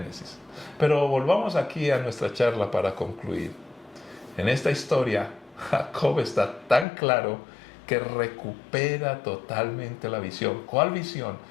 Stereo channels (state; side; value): drops out; right; at 6.9 s